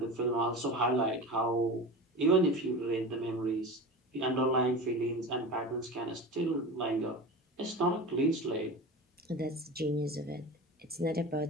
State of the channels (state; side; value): normal; both; correlation 0.30